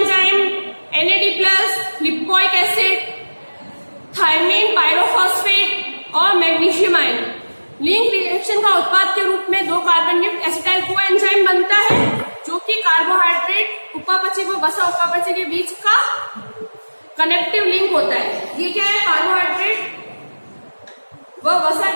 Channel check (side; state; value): both; inverted; correlation -1.00